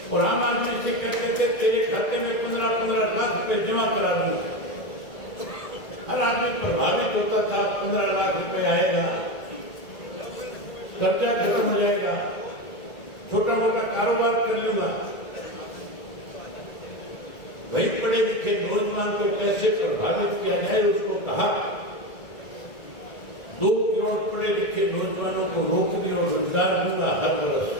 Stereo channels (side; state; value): right; late; 1.9 ms